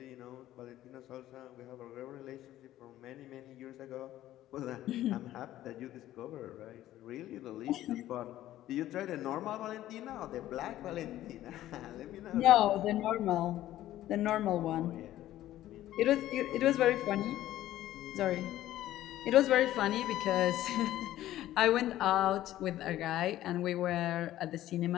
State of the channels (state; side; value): quieter; right; 13.9 dB